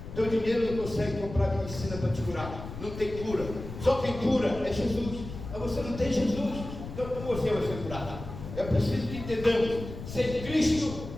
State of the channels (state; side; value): noise; left; rumble, 10 dB below the sound